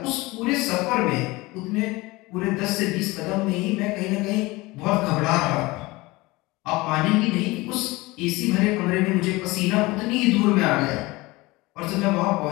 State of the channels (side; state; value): right; quieter; 21.7 dB